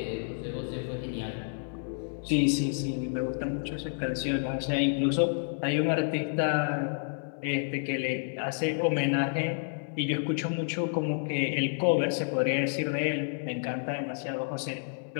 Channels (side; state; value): right; silent; digital silence